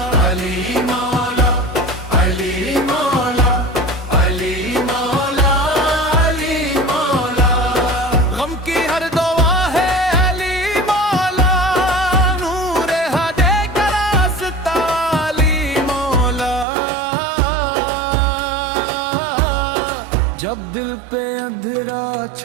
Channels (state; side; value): drops out; left; at 16.7 s